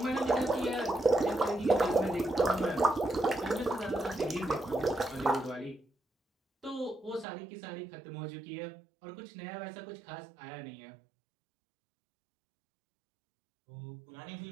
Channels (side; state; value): left; drops out; at 7.2 s